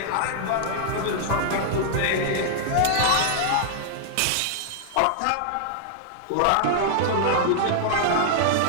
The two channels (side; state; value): both; different; correlation -0.01